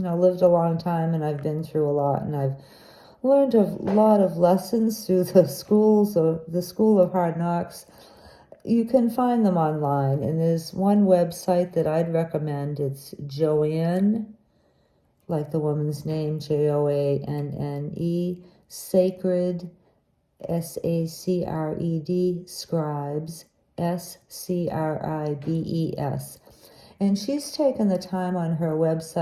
a long time, and I've been through a lot, and I've learned a lot of lessons through the School of Hard Knocks. You can find them online, and there's one website that I'd recommend. It's Joanne, like the woman's name, Joanne, Sacred, Sacred, Scribes, Scribes. And she's taken the time on her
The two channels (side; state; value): both; identical; correlation 1.00